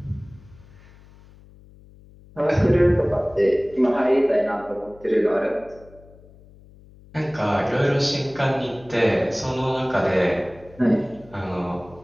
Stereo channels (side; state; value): left; noise; hum, 24 dB below the sound